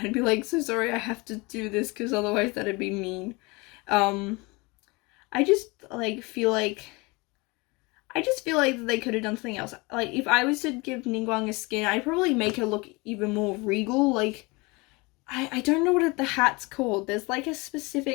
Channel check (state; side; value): quieter; right; 25.9 dB